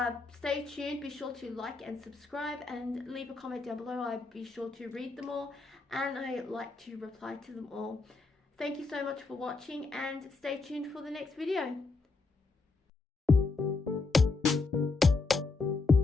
stay tuned. Be sure to like and subscribe and leave a comment down below. I'd be sure to read them all, and I like to reply to them all. Thank you so much for watching, and stay tuned for the next video.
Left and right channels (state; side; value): quieter; right; 3.9 dB